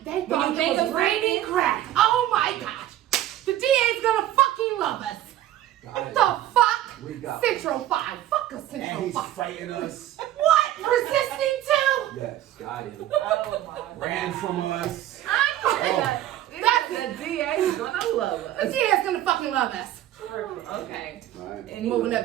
they When thought you think it was of raining fighting- crack, oh my gosh, the DA's gonna fucking love us. What the fuck? We got Central 5. Fuck a and Central he's 5. fighting us. What? Resisting too? Yes, got him. Oh my Ran from us. I know. The DA is gonna love The us. DA's gonna fucking love us. Okay. Right. And Moving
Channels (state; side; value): quieter; left; 13.1 dB